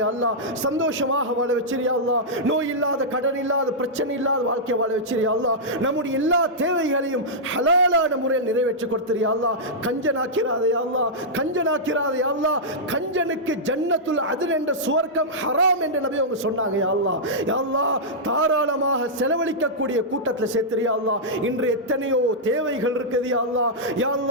யா அல்லாஹ். சந்தோஷமாக வாழ வச்சிரு யா அல்லாஹ். நோய் இல்லாத, கடன் இல்லாத, பிரச்சனை இல்லாத வாழ்க்கை வாழ வச்சிரு யா அல்லாஹ். நம்முடைய எல்லா தேவைகளையும் ஹலாலான முறையில் நிறைவேற்றி கொடுத்துரு யா அல்லாஹ். கஞ்சனாக்கிறாதே யா அல்லாஹ், கஞ்சனாக்கிறாதே யா அல்லாஹ். கஞ்சனுக்கு ஜன்னத்துல் அத்ன் என்ற சுவர்க்கம் ஹராம் என்று நபி அவங்க சொன்னாங்க யா அல்லாஹ். யா அல்லாஹ், தாராளமாக செலவழிக்கக்கூடிய கூட்டத்தில் சேர்த்துரு யா அல்லாஹ். இன்று எத்தனையோ தேவைகள் இருக்குது யா அல்லாஹ். யா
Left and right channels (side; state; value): both; normal; correlation -0.10